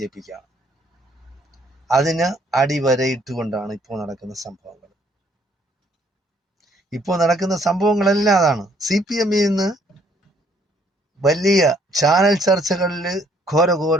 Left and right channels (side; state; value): both; normal; correlation 0.64